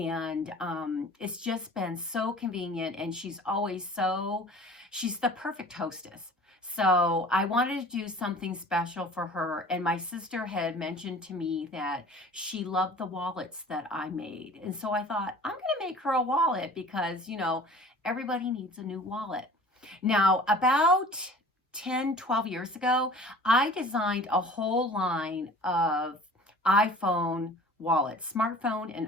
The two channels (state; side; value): normal; both; correlation 0.45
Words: it's just been so convenient. And she's the perfect hostess. So I wanted to do something special for her. And my sister had mentioned to me that she loved the wallets that I made. And so I thought, I'm going to make her a wallet because, everybody needs a new wallet. Now, about 10, 12 years ago, I designed a whole line of iPhone wallets, smartphone and